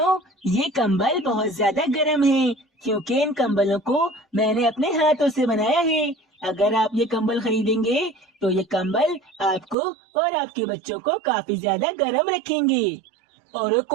ये कंबल बहुत ज्यादा गर्म है क्योंकि इन कंबलों को मैंने अपने हाथों से बनाया है। अगर आप ये कंबल खरीदेंगे तो ये कंबल आपको और आपके बच्चों को काफी ज्यादा गर्म रखेंगे। अरे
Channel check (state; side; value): drops out; left; at 9.8 s